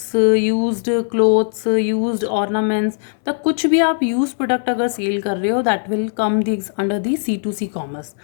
used clothes, used ornaments, तो कुछ भी आप यूज प्रोडक्ट अगर सेल कर रहे हो that will come the under the C2C commerce.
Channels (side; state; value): right; silent; 66 dB below the other